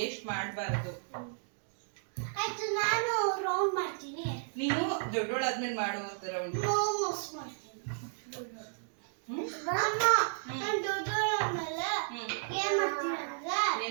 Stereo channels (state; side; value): silent; left; digital silence